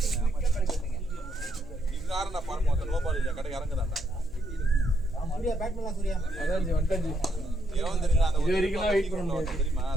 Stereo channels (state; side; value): noise; right; hum, 19 dB below the sound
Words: சூர்யா பேட் பண்ணலாம் சூர்யா. அதான் வந்துட்டாச்சு. எவன் தெரியல அந்த இது வரைக்கும் தான் வெயிட் பண்ண முடியாது. தெரியுமா